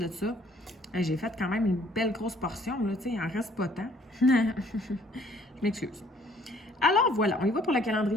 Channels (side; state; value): both; normal; correlation 0.61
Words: ça, j'ai fait quand même une belle grosse portion, là, tu sais, il en reste pas tant. Je m'excuse. Alors voilà, on y va pour le